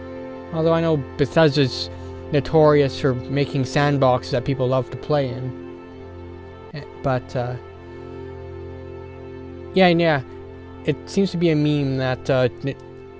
Although I know Bethesda's notorious for making sandboxes that people love to play in. But, yeah, it seems to be a meme that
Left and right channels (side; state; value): both; identical; correlation 1.00